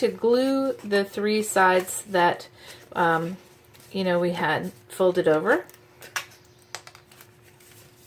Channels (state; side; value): identical; both; correlation 1.00